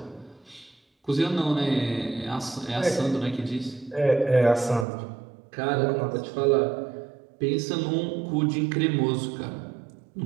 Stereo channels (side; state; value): left; drops out; at 4.9 s